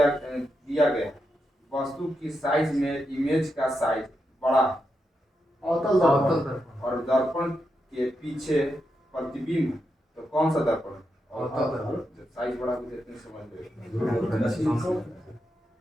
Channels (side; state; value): both; normal; correlation 0.85